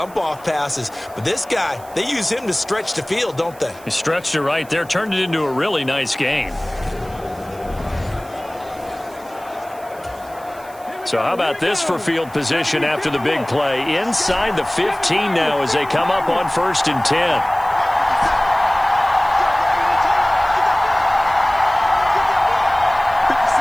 off passes. But this guy, they use him to stretch the field, don't they? He stretched it right there, turned it into a really nice gain. So how about this for field position after the big play? Inside the 15 now as they come up on 1st and 10.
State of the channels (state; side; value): noise; right; hiss, 23 dB below the sound